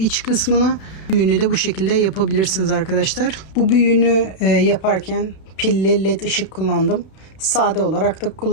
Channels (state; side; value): late; right; 31 ms